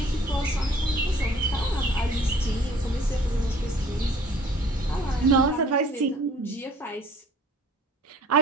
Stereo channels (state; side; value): normal; both; correlation 0.53